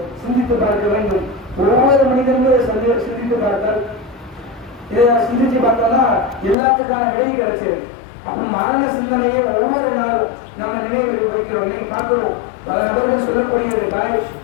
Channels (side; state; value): right; drops out; at 6.6 s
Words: சிந்தித்து பார்க்க வேண்டும். ஒவ்வொரு மனிதனும் சிந்தித்து பார்த்தால், இதை சிந்திச்சு பார்த்தோம்னா எல்லாத்துக்கான விலை கிடைச்சது. அப்ப மரண சிந்தனையை ஒவ்வொரு நாளும் நம்ம நினைவு வைக்கிறோம். இன்னைக்கு பார்க்கிறோம் பல நபர்கள் சொல்லக்கூடியது, பாய்